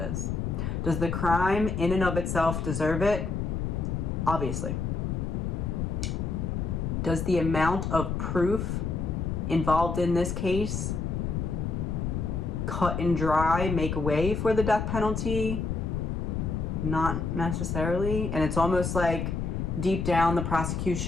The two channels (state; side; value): noise; left; rumble, 2 dB below the sound